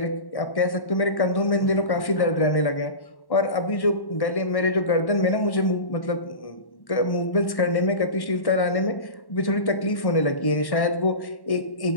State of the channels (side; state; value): right; late; 1.1 ms